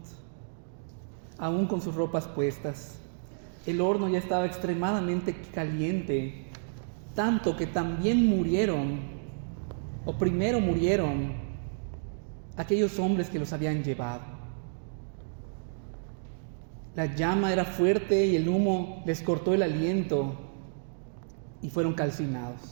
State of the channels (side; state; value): left; silent; digital silence